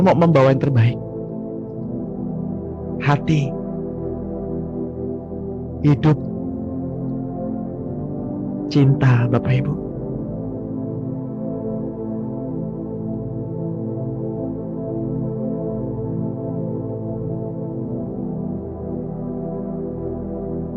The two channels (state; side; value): identical; both; correlation 1.00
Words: mau membawa yang terbaik. Hati, hidup, cinta Bapak Ibu.